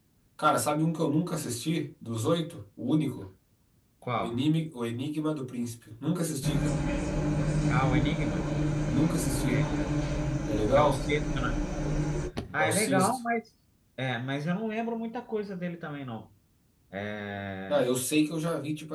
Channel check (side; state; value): both; identical; correlation 1.00